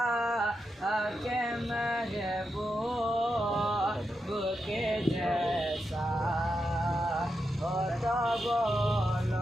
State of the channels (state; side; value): normal; both; correlation 0.86